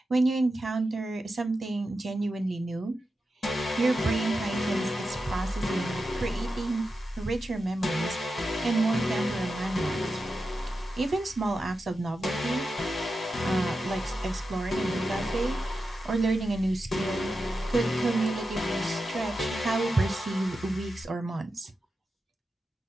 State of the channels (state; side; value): normal; both; correlation 0.90